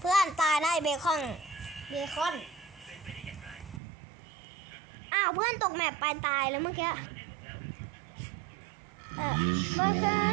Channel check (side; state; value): left; drops out; at 3.8 s